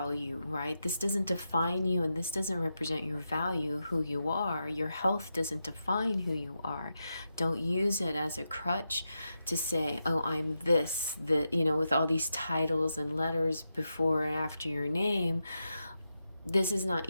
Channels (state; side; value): inverted; both; correlation -0.87